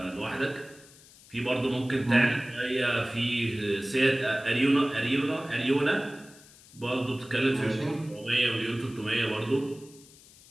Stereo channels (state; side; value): noise; left; hiss, 23 dB below the sound